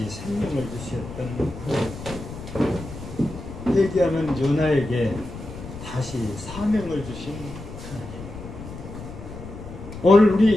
생명을 주셨던 회개하는 요나에게 다시 사명을 주신 하나님. 오늘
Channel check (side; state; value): left; noise; rumble, 12 dB below the sound